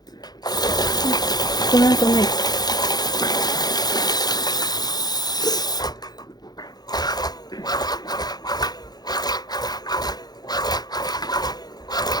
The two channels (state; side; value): late; right; 0.19 ms